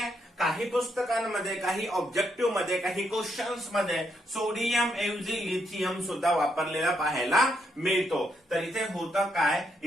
काही पुस्तकांमध्ये, काही ऑब्जेक्टिव्ह मध्ये, काही क्वेश्चन्स मध्ये सोडियम ऐवजी लिथियम सुद्धा वापरलेला पाहायला मिळतो. तर इथे होतं काय,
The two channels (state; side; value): normal; both; correlation 0.78